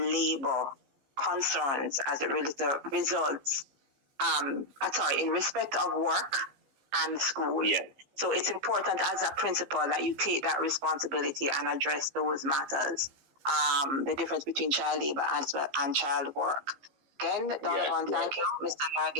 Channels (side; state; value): left; late; 15 ms